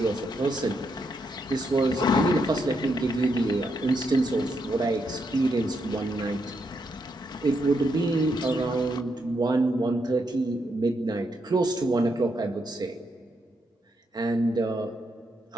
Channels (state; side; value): normal; both; correlation 0.80